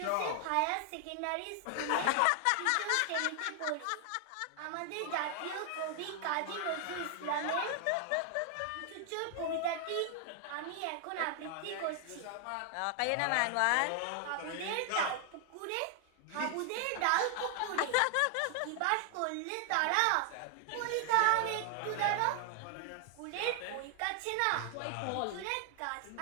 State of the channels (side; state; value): both; different; correlation 0.00